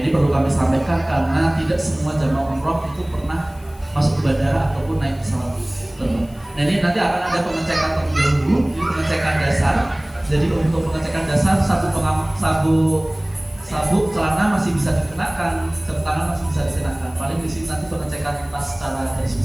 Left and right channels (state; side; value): noise; left; hiss, 27 dB below the sound